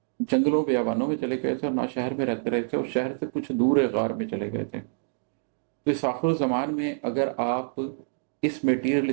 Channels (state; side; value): silent; left; digital silence